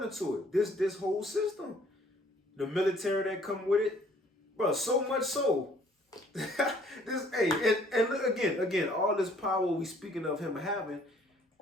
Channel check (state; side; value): normal; both; correlation 0.60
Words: into it. This whole system, the military that come with it, bro. So much so. And look again, all this power we speaking of him having,